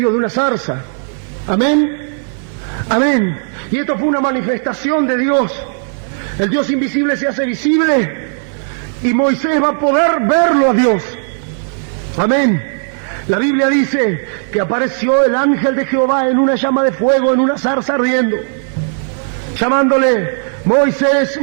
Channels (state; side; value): silent; left; 67 dB below the other